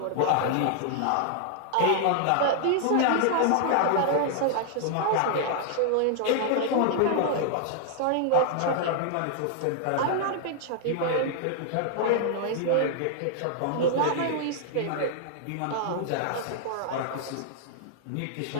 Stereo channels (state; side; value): different; both; correlation -0.01